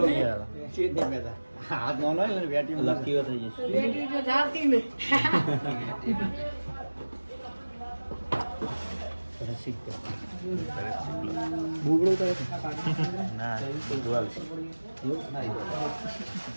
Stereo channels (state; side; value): inverted; both; correlation -1.00